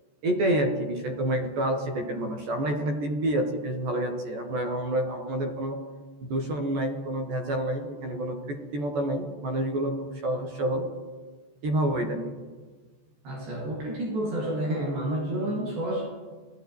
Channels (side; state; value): left; late; 14 ms